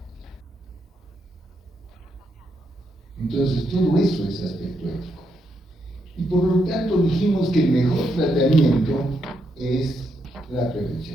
Entonces, todo eso es aspecto ético. Y por lo tanto dijimos que el mejor tratamiento es la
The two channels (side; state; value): both; normal; correlation 0.80